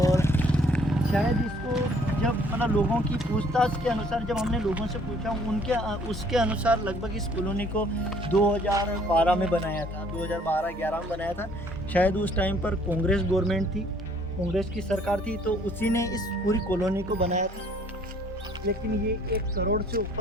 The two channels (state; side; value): normal; both; correlation 0.60